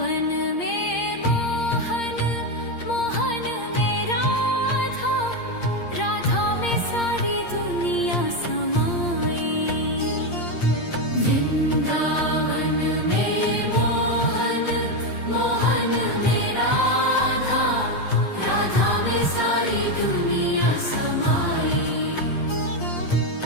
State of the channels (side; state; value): right; late; 8.6 ms